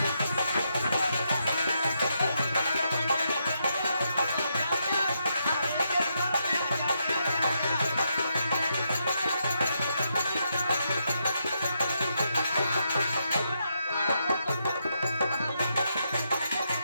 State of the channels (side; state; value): both; inverted; correlation -0.81